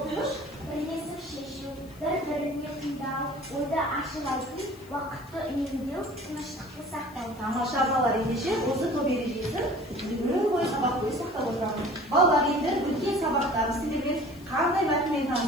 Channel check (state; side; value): noise; left; hiss, 25 dB below the sound